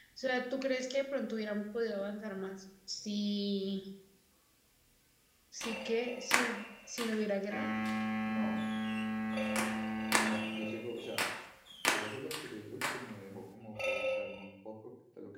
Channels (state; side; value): identical; both; correlation 1.00